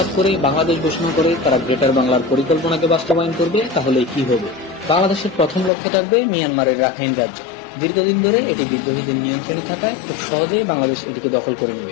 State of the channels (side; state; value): right; drops out; at 5.7 s